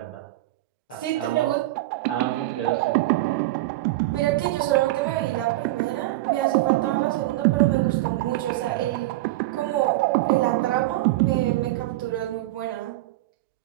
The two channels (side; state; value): left; quieter; 17.3 dB